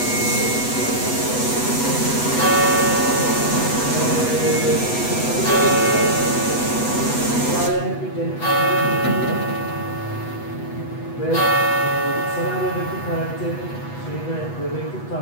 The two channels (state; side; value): late; right; 8.1 ms